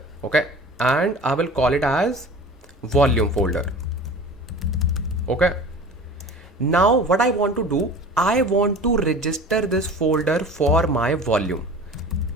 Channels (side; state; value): both; normal; correlation 0.39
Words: Okay, and I will call it as volume folder. Okay, now what I want to do, I want to register this folder for my volume.